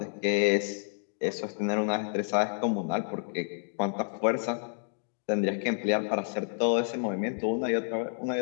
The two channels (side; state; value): right; silent; digital silence